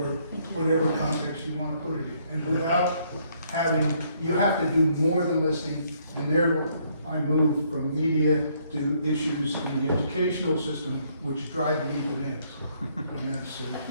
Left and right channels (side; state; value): both; inverted; correlation -0.68